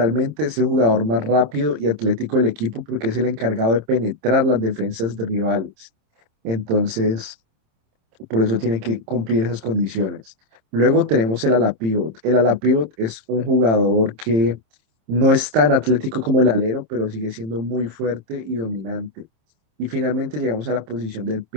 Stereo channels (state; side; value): late; left; 27 ms